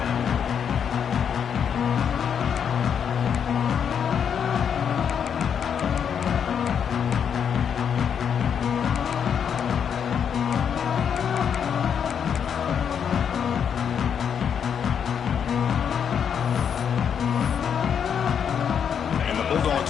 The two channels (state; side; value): quieter; right; 7.8 dB